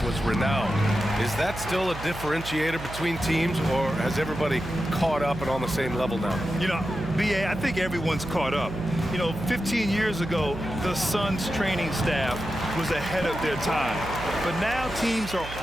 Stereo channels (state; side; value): noise; right; hum, 11 dB below the sound